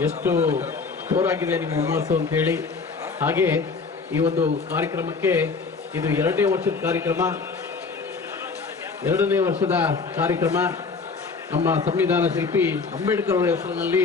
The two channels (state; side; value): quieter; right; 4.6 dB